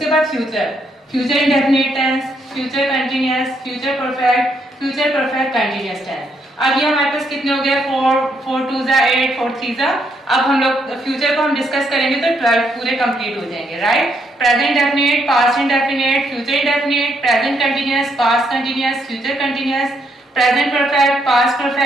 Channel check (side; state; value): both; normal; correlation 0.75